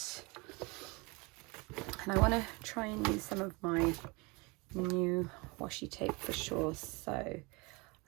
And I want to try and use some of my new washi tape for sure. So I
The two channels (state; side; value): quieter; left; 27.2 dB